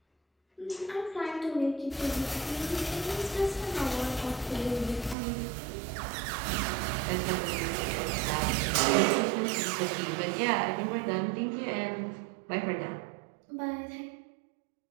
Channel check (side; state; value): left; drops out; at 5.2 s